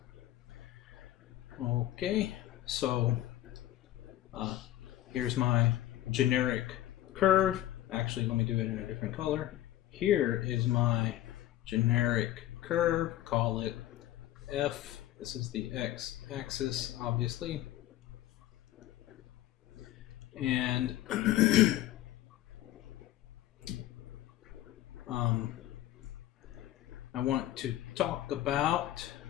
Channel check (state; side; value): quieter; right; 14.0 dB